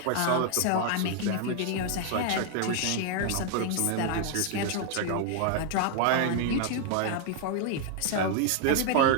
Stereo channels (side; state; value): both; different; correlation 0.00